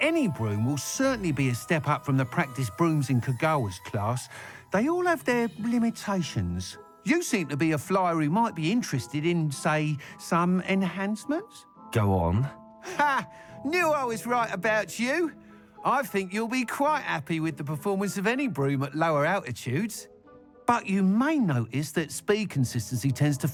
broom will certainly be a step up from the practice brooms in Kagawa's class, they all have their limitations. You seem to be a flyer who might be interested in, say, some enhancements? Go on. Ha! Knew I was right about you. I think you'll be quite happy with the performance of any broom at lower altitudes. But you may notice that speed consistency tends to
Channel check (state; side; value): identical; both; correlation 1.00